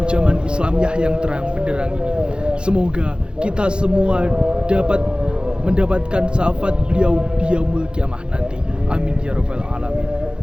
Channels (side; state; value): left; late; 0.051 ms